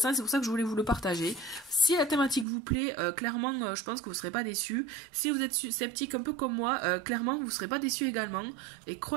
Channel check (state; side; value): drops out; left; at 2.5 s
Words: C'est pour ça que je voulais vous le partager. Si la thématique vous plaît, clairement je pense que vous ne serez pas déçus. Si vous êtes sceptique un peu comme moi, clairement vous ne serez pas déçus également. Et